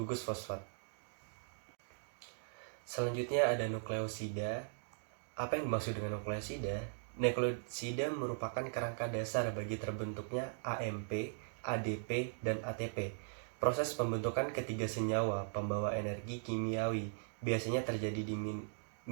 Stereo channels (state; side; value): silent; left; digital silence